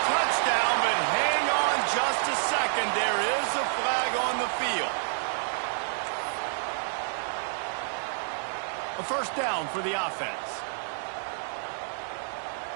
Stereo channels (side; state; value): left; silent; 59 dB below the other